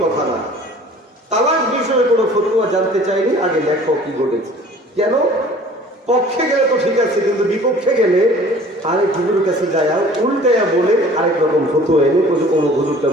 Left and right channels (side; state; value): both; normal; correlation 0.49